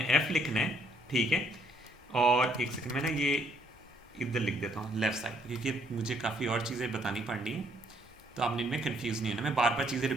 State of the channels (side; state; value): both; normal; correlation 0.68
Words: f लिखना है। ठीक है, और एक सेकंड में ना ये इधर लिख देता हूँ लेफ्ट साइड, क्योंकि मुझे काफ़ी और चीज़ें बतानी पड़नी है, तो आपने इनमें कंफ्यूज नहीं है ना, मैं बार बार चीज़ें